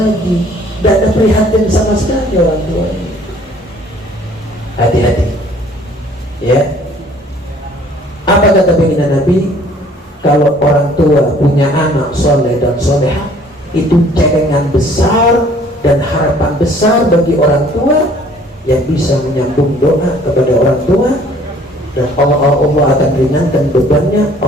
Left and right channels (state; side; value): normal; both; correlation 0.56